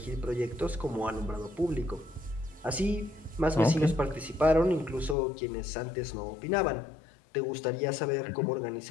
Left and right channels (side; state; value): right; drops out; at 5.2 s